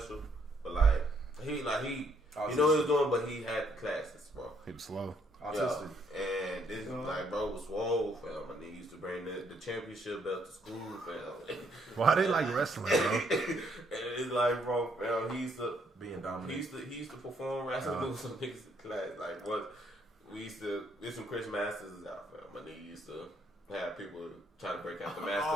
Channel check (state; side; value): normal; both; correlation 0.69